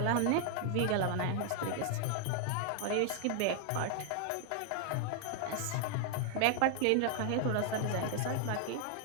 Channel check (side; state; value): both; different; correlation 0.00